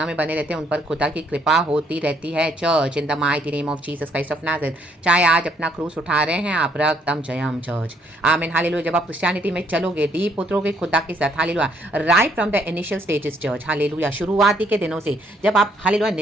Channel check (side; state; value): both; normal; correlation 0.69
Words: में बने रहते हैं उन पर खुदा की कृपा होती रहती है church, in the mighty name of Jesus Christ of Nazareth. चाहे आज अपना क्रूस उठा रहे हैं आप, रक्तम जयम चर्च, आमीन हालेलुया। जब आप क्रिश्चियनिटी में चलोगे, डीप उतरोगे खुदा के साथ, hallelujah, right from the initial stages church, hallelujah, शुरुआती के दिनों से जब आप हालेलुया